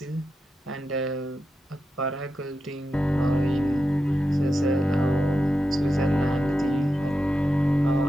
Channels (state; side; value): normal; both; correlation 0.89